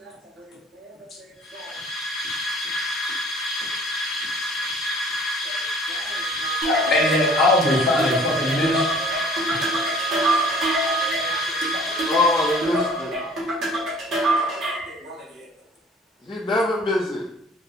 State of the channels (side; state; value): both; normal; correlation 0.52